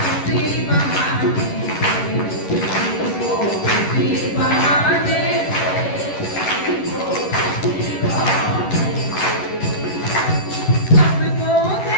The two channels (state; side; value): late; right; 11 ms